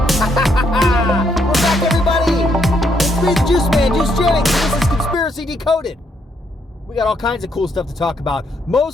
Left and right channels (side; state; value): both; normal; correlation 0.73